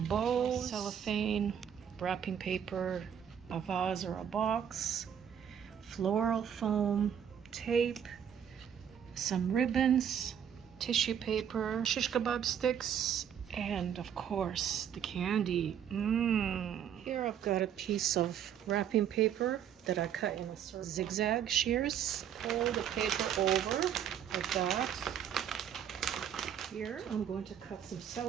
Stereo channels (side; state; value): left; quieter; 8.9 dB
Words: bows, cellophane, wrapping paper, a vase or a box, floral foam, tape, some ribbons, tissue paper, shish kebab sticks, and of course the candy. Here I've got a piece of wrapping paper that I cut in a circle. Zigzag shears. Fold the paper over like that. Here I'm going to cut some